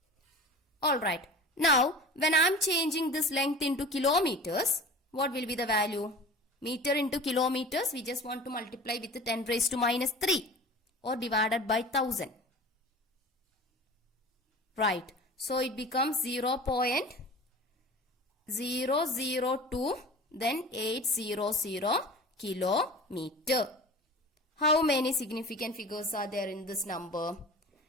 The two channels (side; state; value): both; normal; correlation 0.38